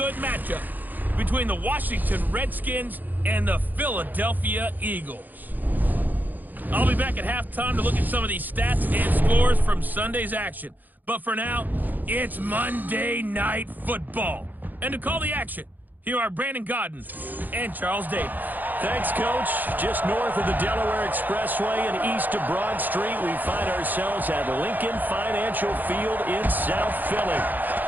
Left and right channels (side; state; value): left; late; 0.085 ms